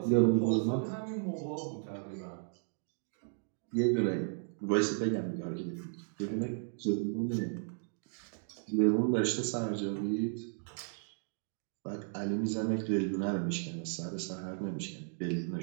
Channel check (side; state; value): left; silent; digital silence